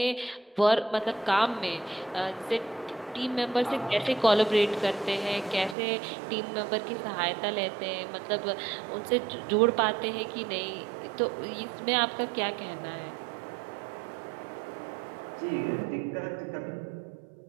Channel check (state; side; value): drops out; left; at 5.8 s